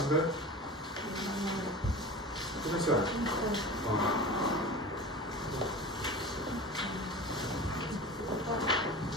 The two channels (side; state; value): both; normal; correlation 0.33